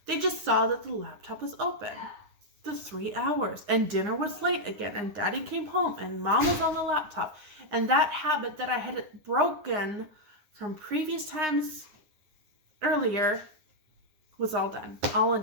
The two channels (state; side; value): late; left; 9.7 ms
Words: They just saw that the laptop was open. The 3 hours, and dinner was late again, and Daddy came home and Mom was on the laptop. And that habit that I had broken from previous times earlier was all done, all